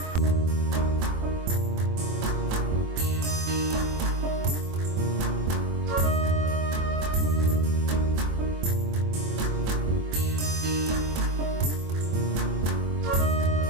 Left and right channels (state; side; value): late; left; 24 ms